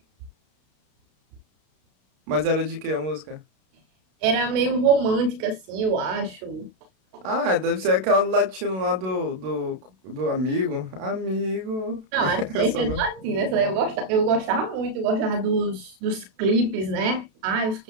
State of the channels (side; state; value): left; late; 32 ms